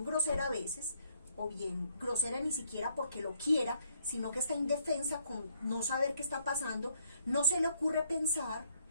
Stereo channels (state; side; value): inverted; both; correlation -0.72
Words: grosera a veces, o bien grosera ni siquiera porque lo quiera, sino que está indefensa con no saber qué está pasando, no se le ocurre pensar